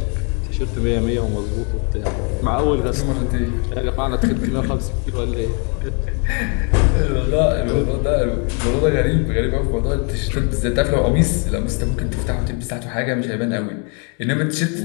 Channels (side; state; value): right; quieter; 37.1 dB